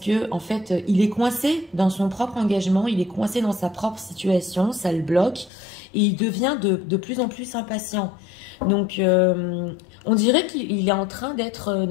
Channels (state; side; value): drops out; right; at 5.5 s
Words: en fait, il est coincé dans son propre engagement, il est coincé dans sa propre situation, ça le bloque et il devient de plus en plus impatient. Donc, on dirait qu'il est en train d'être